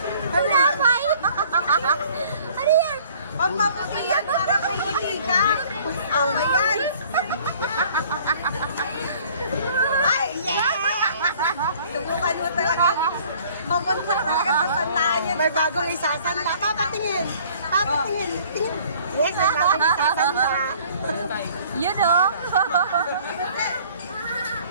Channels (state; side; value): inverted; both; correlation -0.54